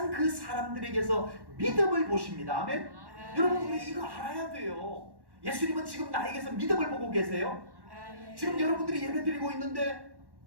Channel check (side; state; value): left; late; 1.1 ms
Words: 그 사람들에게서 믿음을 보십니다. 아멘. 여러분 우리 이거 알아야 돼요. 예수님은 지금 나에게서 믿음을 보고 계세요. 아멘. 지금 여러분들이 예배 드리고 있는데